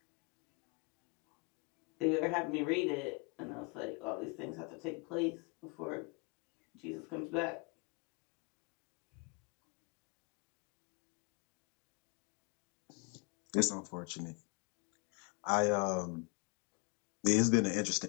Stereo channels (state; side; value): quieter; right; 32.7 dB